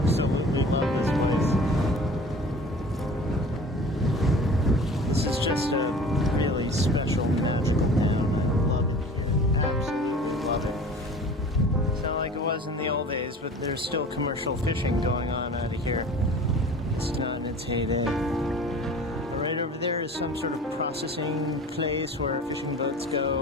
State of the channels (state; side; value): normal; both; correlation 0.43